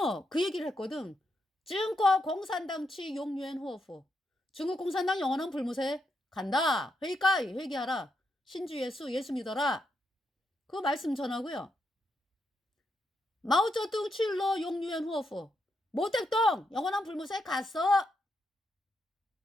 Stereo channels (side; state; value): both; normal; correlation 0.81